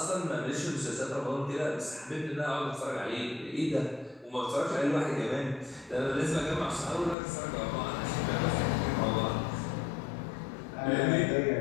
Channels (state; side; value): drops out; right; at 7.2 s